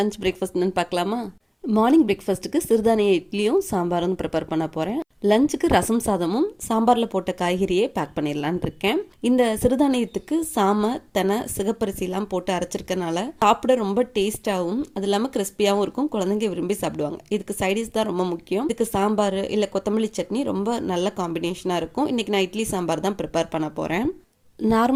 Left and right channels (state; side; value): identical; both; correlation 1.00